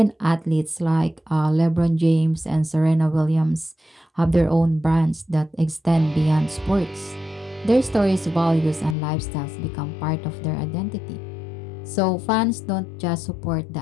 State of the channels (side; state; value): right; drops out; at 9.0 s